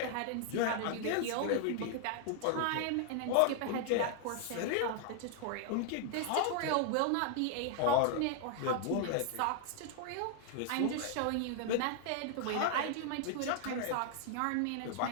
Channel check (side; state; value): both; different; correlation 0.00